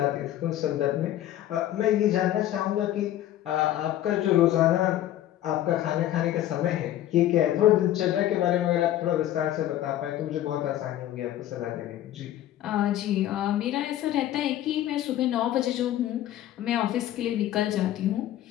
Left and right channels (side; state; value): right; quieter; 12.9 dB